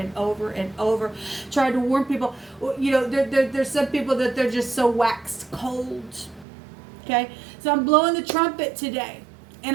over and over tried to warn people. You know, there's some people that they're just so waxed cold. Okay, so I'm blowing the trumpet today, and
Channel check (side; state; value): left; drops out; at 6.5 s